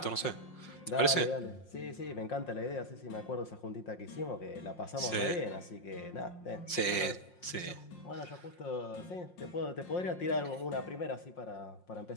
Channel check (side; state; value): right; late; 5.6 ms